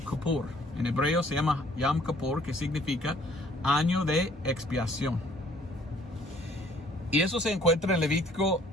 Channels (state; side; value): normal; both; correlation 0.59